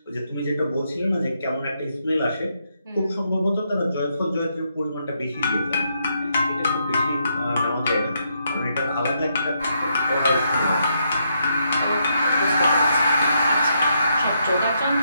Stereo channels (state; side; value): inverted; both; correlation -0.78